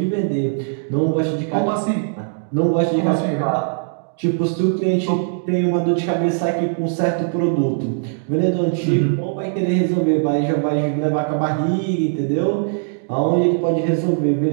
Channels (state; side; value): silent; left; digital silence